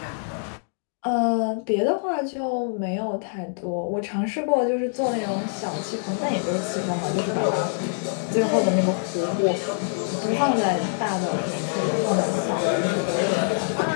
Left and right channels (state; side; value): silent; right; digital silence